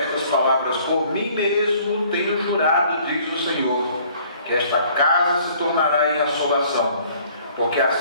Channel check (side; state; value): both; inverted; correlation -0.57